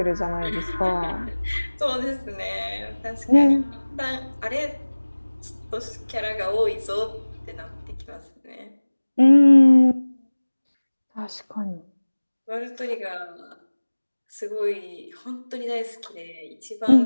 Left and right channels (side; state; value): both; inverted; correlation -1.00